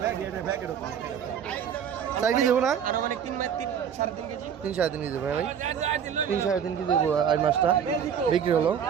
4 কেজি দেবো না? 3-3.5 কেজি দেবো ভাই। 3-3.5 কেজি দেবো আর মাছটা বিক্রি হলো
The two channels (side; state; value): left; quieter; 8.1 dB